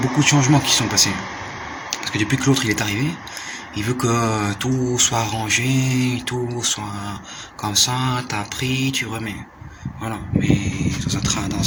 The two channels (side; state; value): both; identical; correlation 1.00